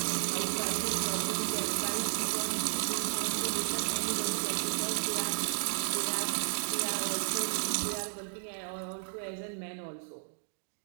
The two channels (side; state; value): left; silent; digital silence